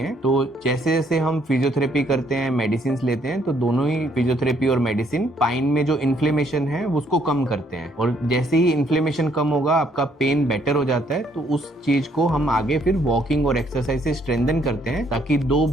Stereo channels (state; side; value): normal; both; correlation 0.68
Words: तो जैसे जैसे हम फिजियोथेरेपी करते हैं, मेडिसिन लेते हैं, तो दोनों ही फिजियोथेरेपी और मेडिसिन स्पाइन में जो इन्फ्लेमेशन है उसको कम करते हैं। और जैसे ही इन्फ्लेमेशन कम होगा, आपका पेन बेटर हो जाता है, तो उस चीज को हम आगे फिर वॉकिंग और एक्सरसाइज से स्ट्रेंथन करते हैं, ताकि दो